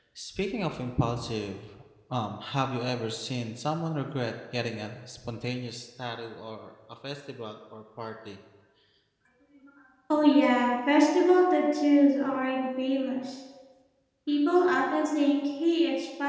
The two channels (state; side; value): identical; both; correlation 1.00